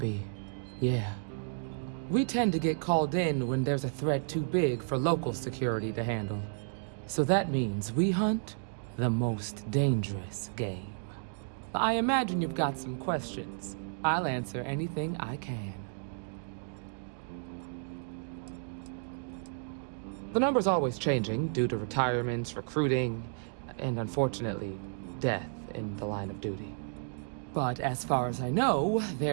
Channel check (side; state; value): left; silent; digital silence